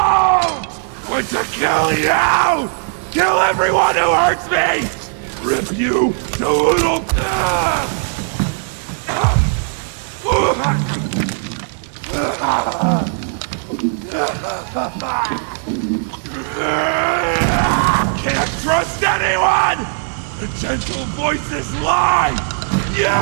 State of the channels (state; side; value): silent; left; 55 dB below the other